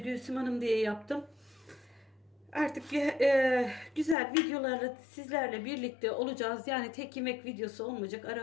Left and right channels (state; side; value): drops out; right; at 4.2 s